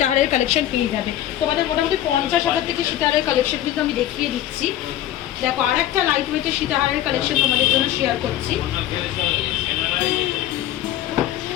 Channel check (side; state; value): right; quieter; 12.8 dB